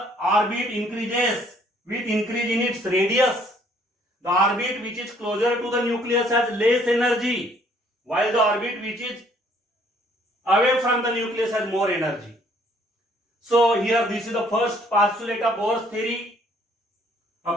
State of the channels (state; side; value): normal; both; correlation 0.62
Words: orbit increases with increase in its radius. The orbit which is closer to the nucleus has less energy, while the orbit which is away from the nucleus has more energy. So here this is the first postulate of Bohr's theory.